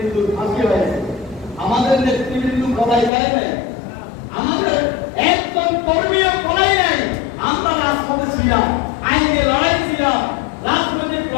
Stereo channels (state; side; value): drops out; right; at 3.1 s